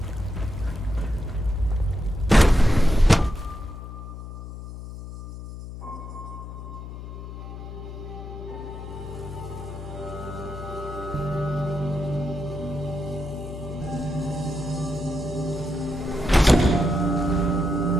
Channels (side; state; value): left; noise; hum, 10 dB below the sound